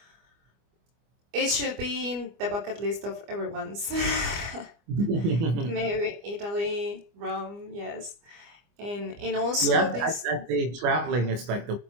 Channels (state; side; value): late; left; 24 ms